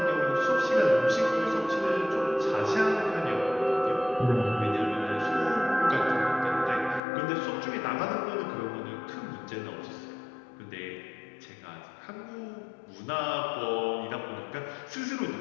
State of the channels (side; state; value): right; drops out; at 7.0 s